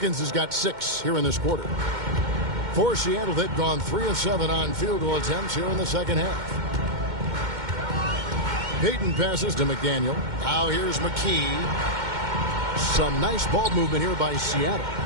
has got 6 here in this quarter. For Seattle, they've gone 3 of 7 on field goal attempts here in the second half. Payton passes to McDaniel. Now here's McKee. Some nice ball movement here by Seattle.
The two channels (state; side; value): late; left; 2.1 ms